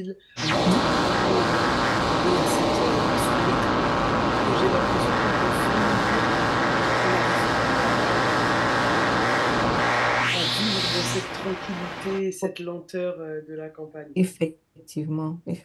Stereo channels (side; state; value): both; identical; correlation 1.00